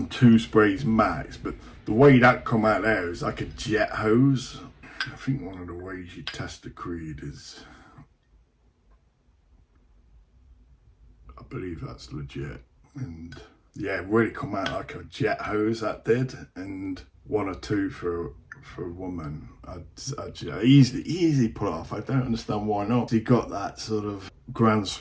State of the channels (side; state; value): both; identical; correlation 1.00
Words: sprays max, but the way that come out there is like a jet hose. I think one of the ways you test the Creed is, I believe that's legit, and yeah, it really come out like a jet hose, that did. And 1 or 2 for a woman, I'd easily pull off. I don't understand why not. He got that sort of Grand